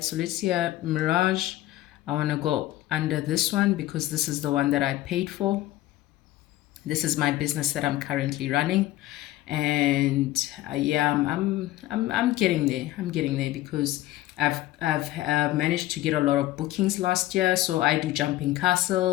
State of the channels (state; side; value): quieter; right; 15.8 dB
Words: So let's see, Mirage. I want to go under this one because this is the one that I paid for. This is my business that I'm currently running, and yeah, I'm getting there. I'm getting there because I've managed to get a lot of bookings last year. So I do jumping